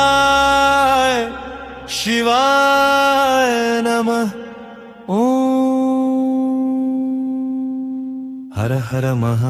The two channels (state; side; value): identical; both; correlation 1.00